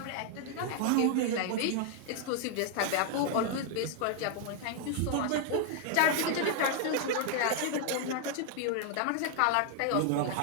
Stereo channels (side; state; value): both; different; correlation 0.00